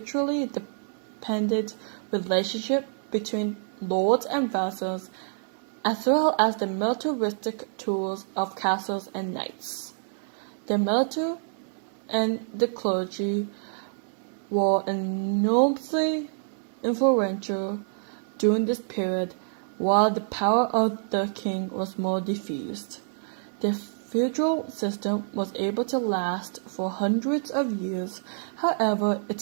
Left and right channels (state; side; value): silent; left; digital silence